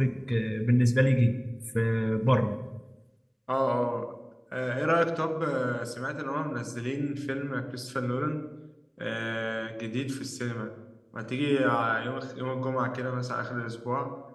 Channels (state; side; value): identical; both; correlation 1.00